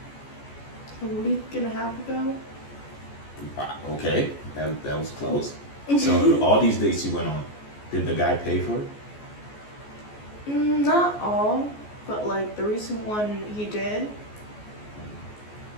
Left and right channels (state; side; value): late; right; 14 ms